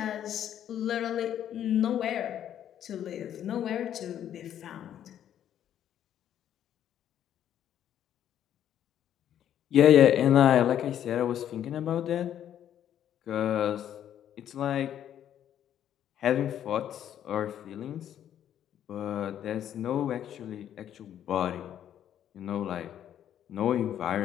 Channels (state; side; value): quieter; right; 10.4 dB